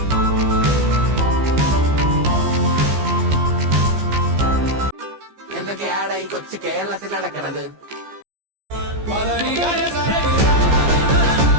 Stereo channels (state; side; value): late; left; 15 ms